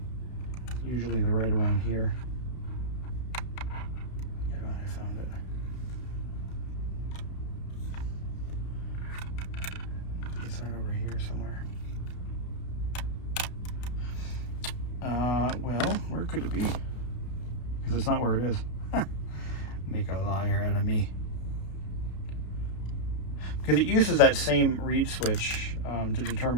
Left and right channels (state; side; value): late; right; 33 ms